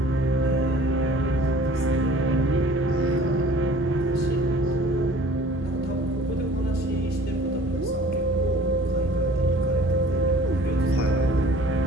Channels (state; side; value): normal; both; correlation 0.49